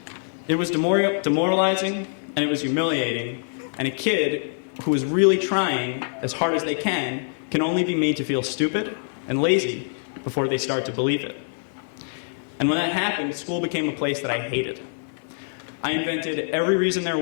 It was demoralizing, and it was humiliating, and a kid who is really trying as hard as they can only be made to feel stupid and lazy before they start to believe it. And when that happened, school became a place that I hated. I invented every reason there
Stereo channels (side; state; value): right; silent; digital silence